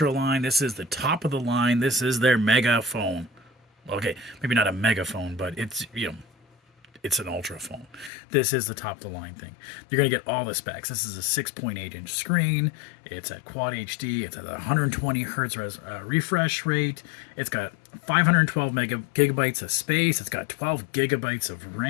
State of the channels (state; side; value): drops out; right; at 8.1 s